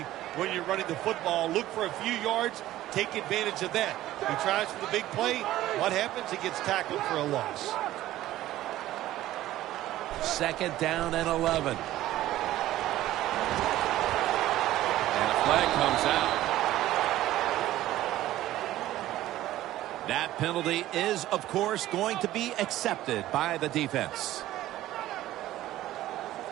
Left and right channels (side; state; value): left; quieter; 14.7 dB